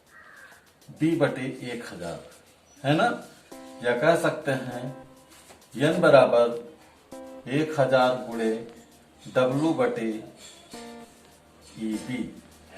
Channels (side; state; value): both; identical; correlation 1.00